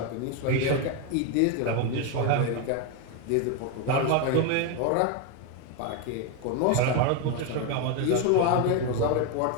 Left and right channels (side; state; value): both; different; correlation 0.02